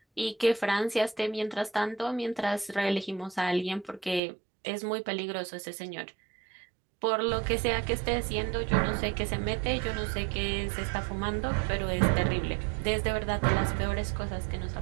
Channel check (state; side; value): drops out; left; at 4.2 s